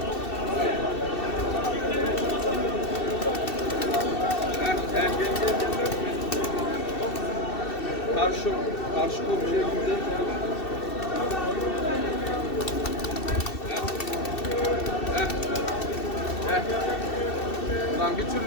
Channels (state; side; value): late; right; 2.7 ms